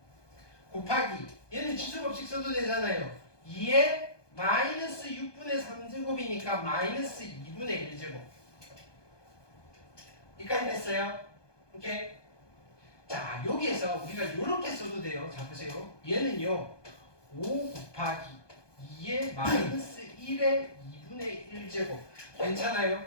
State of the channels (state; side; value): late; right; 1.2 ms